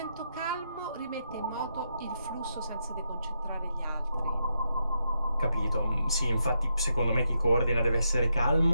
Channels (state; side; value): inverted; both; correlation -0.82